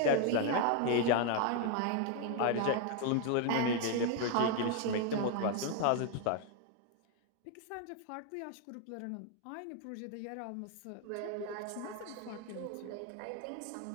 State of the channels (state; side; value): different; both; correlation 0.00